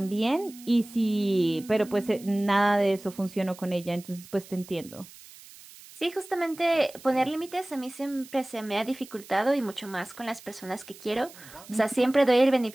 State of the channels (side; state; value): right; noise; hiss, 20 dB below the sound